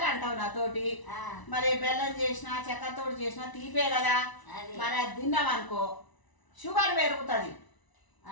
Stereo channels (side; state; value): right; late; 1.0 ms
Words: అంటావు నాతోటి. మరి బెల్లం చేసినా చక్కెరతోటి చేసినా తీపే కదా. మరి అది తిన్నాం అనుకో షుగర్ పెరుగుతుంది.